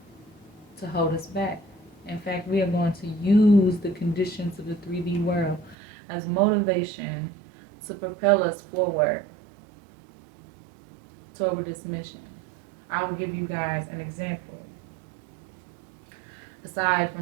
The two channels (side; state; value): left; drops out; at 5.8 s